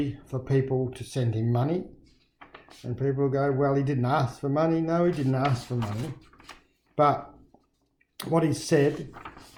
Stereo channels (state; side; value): identical; both; correlation 1.00